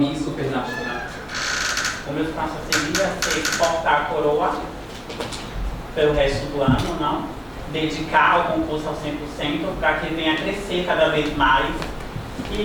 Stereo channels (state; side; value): identical; both; correlation 1.00